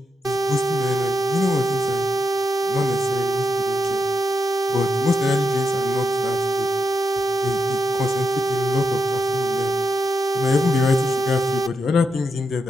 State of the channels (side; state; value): both; normal; correlation 0.84